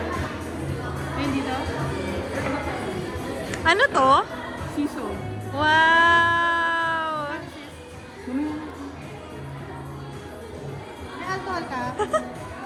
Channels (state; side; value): identical; both; correlation 1.00